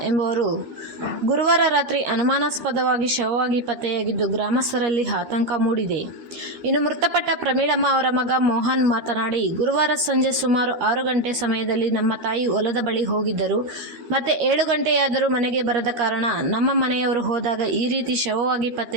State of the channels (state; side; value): late; left; 13 ms